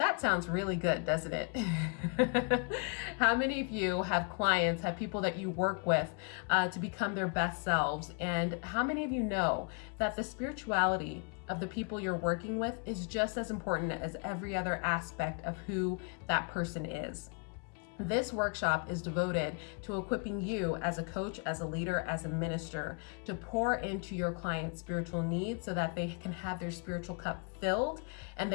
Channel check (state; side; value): quieter; right; 36.9 dB